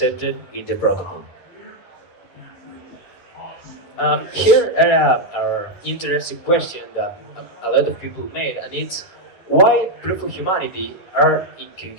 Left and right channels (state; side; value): late; right; 11 ms